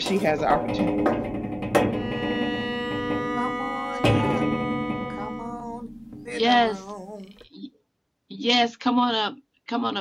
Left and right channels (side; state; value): both; identical; correlation 1.00